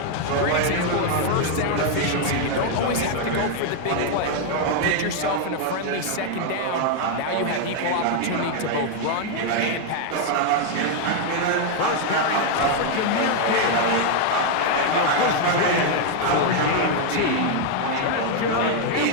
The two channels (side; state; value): both; different; correlation 0.00